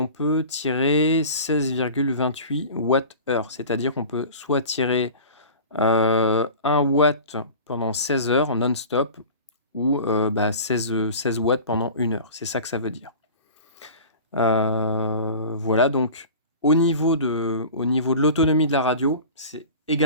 peut tirer 16,28 Wh. C'est-à-dire qu'on peut soit tirer 1 watt pendant 16 heures non-stop ou 16 watts pendant 1 heure. C'est ça que ça veut dire. Voilà, donc au niveau de l'autonomie de la radio, c'est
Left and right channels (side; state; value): both; inverted; correlation -0.38